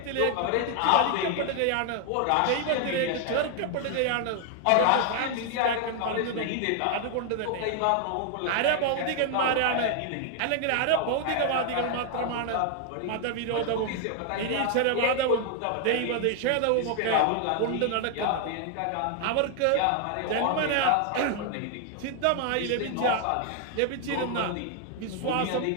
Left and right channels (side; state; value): both; different; correlation 0.00